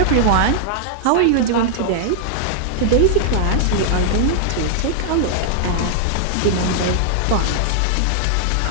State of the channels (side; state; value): both; different; correlation -0.01